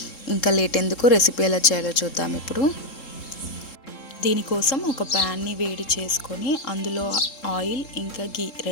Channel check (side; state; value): right; late; 3.7 ms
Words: ఇంకా లేట్ ఎందుకు, రెసిపీ ఎలా చేయాలో చూద్దాం ఇప్పుడు. దీనికోసం ఒక ప్యాన్ని వేడి చేసుకొని అందులో ఆయిల్ ఇంకా గీ